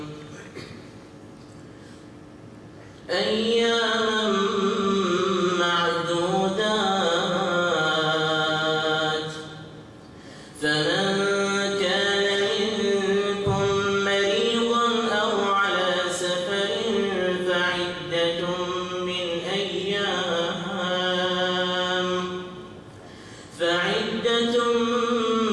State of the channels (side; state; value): both; identical; correlation 1.00